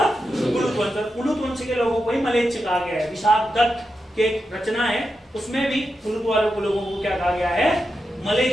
कुलुत वंश। और कुलुत वंश के लोगों को ही मलेच्छ कहा गया है। विशाख दत्त की एक रचना है, उसमें भी कुलुत वालों को लोगों को क्या कहा गया है?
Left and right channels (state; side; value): normal; both; correlation 0.88